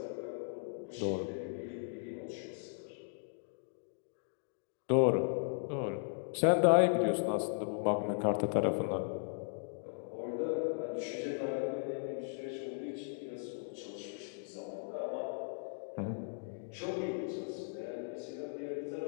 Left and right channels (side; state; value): right; silent; digital silence